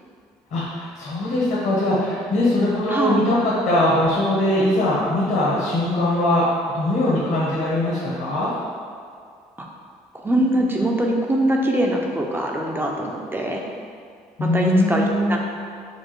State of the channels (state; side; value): normal; both; correlation 0.62